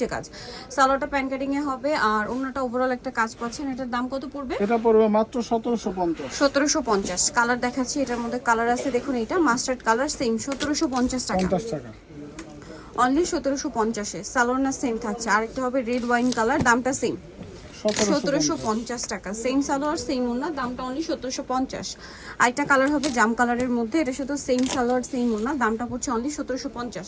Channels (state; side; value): identical; both; correlation 1.00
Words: কাজ, সালোয়ারটা প্যান কাটিং এ হবে আর ওড়নাটা ওভারঅল একটা কাজ পাচ্ছেন। এটার দাম কত পড়বে? এটা পড়বে মাত্র 1750। 1750। কালার দেখাচ্ছি, এটার মধ্যে কালার আছে দেখুন, এটা মাস্টার্ড কালার, সেম 1750 টাকা। অনলি 1750-এ। সালোয়ার না সেম থাকছে। আরেকটা হবে রেড ওয়াইন কালার, দামটা সেম 1750 টাকা। সেম সালোয়ার সেম ওড়না, দামটা অনলি 1750। আরেকটা কালার হবে জাম কালারের মধ্যে, এটা শুধু সেম সালোয়ার সেম ওড়না, দামটা পড়ছে অনলি 1750।